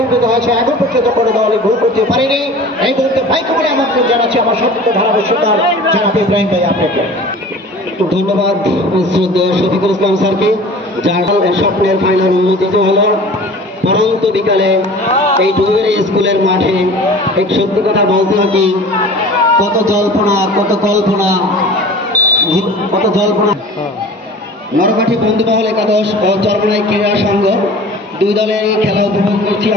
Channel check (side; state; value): both; normal; correlation 0.42